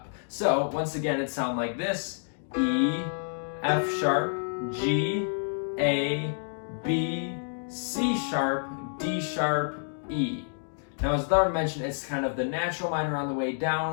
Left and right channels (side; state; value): right; silent; digital silence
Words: So once again, it sounds like this: E, F sharp, G, A, B, C sharp, D sharp, E. Now, as Atharva mentioned, it's kind of the natural minor on the way